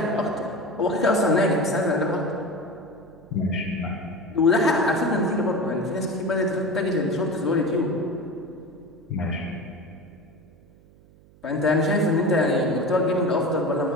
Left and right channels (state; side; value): noise; right; hum, 27 dB below the sound